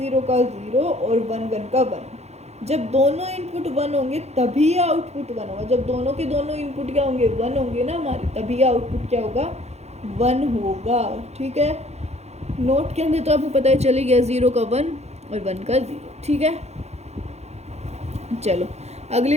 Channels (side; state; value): left; late; 0.31 ms